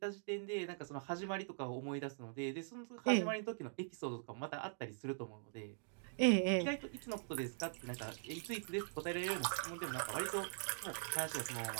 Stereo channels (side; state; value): left; silent; digital silence